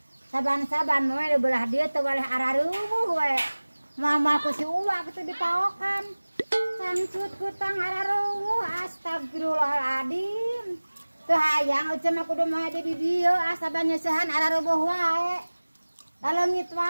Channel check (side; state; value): both; inverted; correlation -1.00